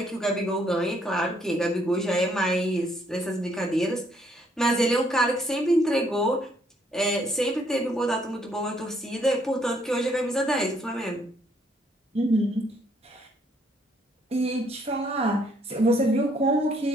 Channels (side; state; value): both; normal; correlation 0.68